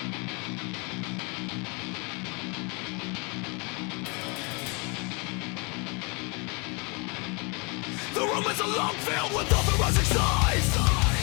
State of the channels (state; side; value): quieter; right; 31.9 dB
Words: The room is a long field with authorizing signs,